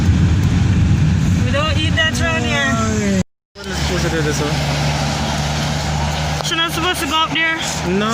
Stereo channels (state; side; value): identical; both; correlation 1.00